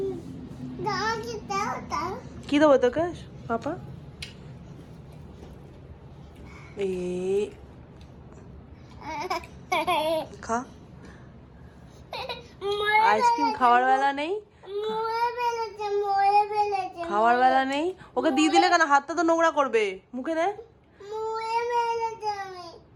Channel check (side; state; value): both; identical; correlation 1.00